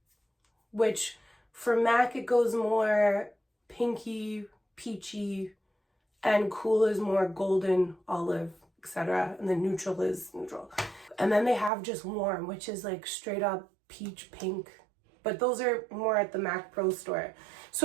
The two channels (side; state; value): left; drops out; at 11.7 s